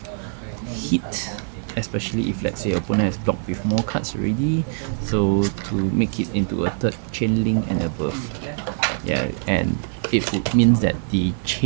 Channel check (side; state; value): left; silent; 63 dB below the other